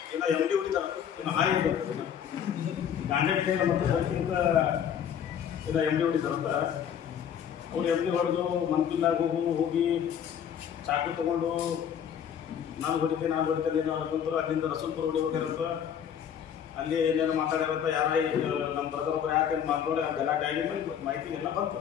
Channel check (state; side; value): quieter; right; 8.6 dB